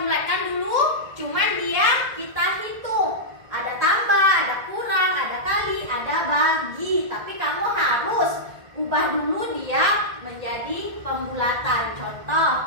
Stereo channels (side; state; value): left; late; 1.8 ms